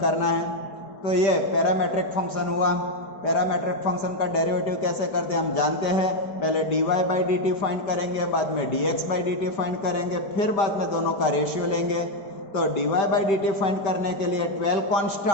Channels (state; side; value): late; right; 5.1 ms